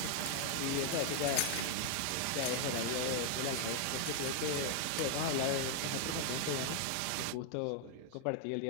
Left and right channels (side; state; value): both; different; correlation 0.00